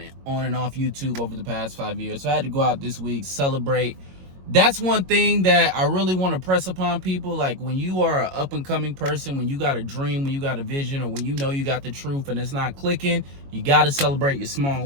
on and off YouTube over the past 5 years. So I had to go out this week, celebrate. That's one thing that I really want to press upon people. Like, when you are an up and coming person, when you got a dream, when you got a vision, or when you know you got the truth and it's not clicking, you got to celebrate your small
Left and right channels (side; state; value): left; late; 22 ms